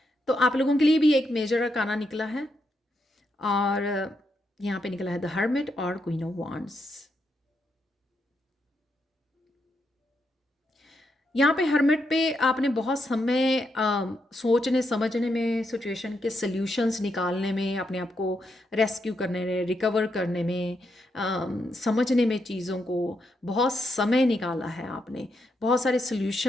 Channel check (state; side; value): normal; both; correlation 0.81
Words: तो आप लोगों के लिए भी एक मेजर अरकाना निकला है, और यहाँ पे निकला है द हर्मिट और क्वीन ऑफ वांड्स। यहाँ पे हर्मिट पे आपने बहुत समय सोचने समझने में, सिचुएशन के सल्यूशंस निकालने में, अपने आप को रेस्क्यू करने में, रिकवर करने में, समझने में चीज़ों को बहुत समय निकाला है आपने। बहुत सारे